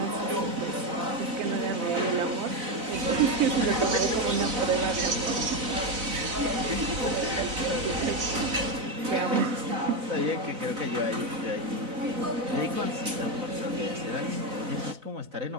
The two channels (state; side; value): late; left; 4.0 ms